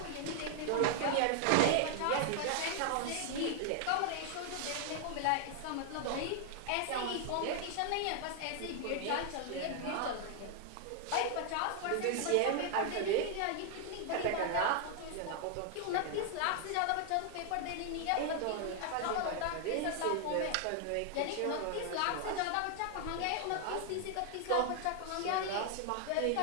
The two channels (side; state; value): both; different; correlation 0.00